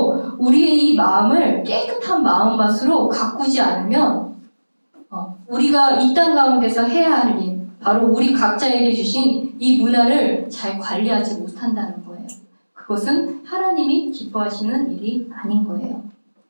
우리의 이 마음을 깨끗한 마음밭으로 가꾸지 않으면 우리가 이 땅 가운데서 해야 할 일, 바로 우리 각자에게 주신 이 문화를 잘 관리하지 못한다는 거예요. 그것은 하나님이 기뻐하시는 일이 아닌 거예요.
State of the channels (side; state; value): both; inverted; correlation -1.00